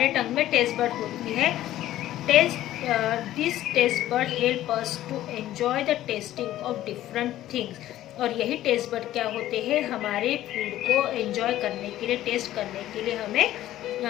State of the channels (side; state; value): right; quieter; 13.8 dB